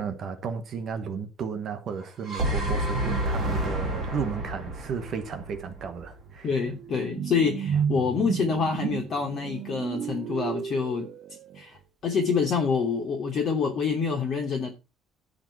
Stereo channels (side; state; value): both; normal; correlation 0.45